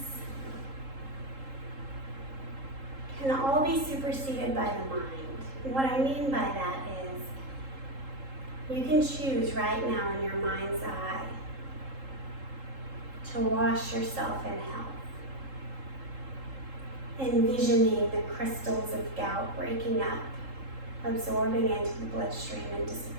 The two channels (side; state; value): left; late; 3.7 ms